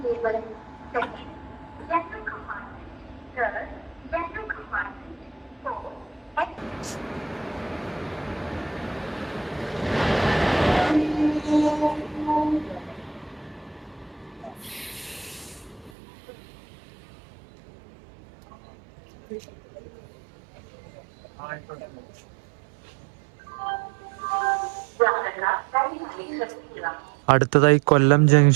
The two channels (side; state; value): left; drops out; at 15.9 s